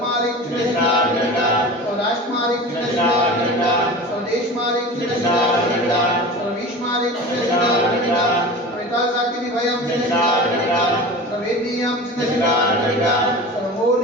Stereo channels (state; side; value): normal; both; correlation 0.34